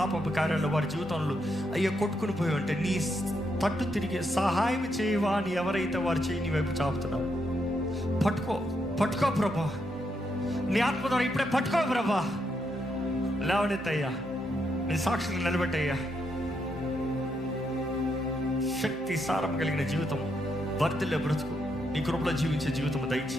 కార్యాల్లో వారి జీవితంలో అయ్యో కొట్టుకుని పోయి ఉంటే నీ తట్టు తిరిగి సహాయం చేయవా అని ఎవరైతే వారు చేయి నీ వైపు చాపుతున్నావు, పట్టుకో ప్రభా. నీ ఆత్మ ద్వారా ఇప్పుడే పట్టుకో ప్రభా. లేవనెత్తయ్యా, నీ సాక్షులు నిలబెట్టయ్యా. శక్తి సారం కలిగిన జీవితం, వర్ధిల్లే బ్రతుకు, నీ కృపలో జీవించే జీవితం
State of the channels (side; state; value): both; normal; correlation 0.79